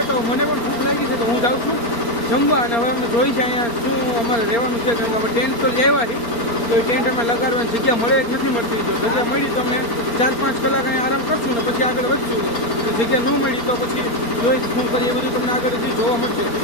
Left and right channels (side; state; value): right; late; 4.3 ms